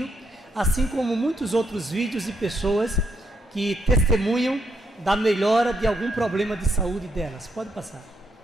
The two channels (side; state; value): both; normal; correlation 0.77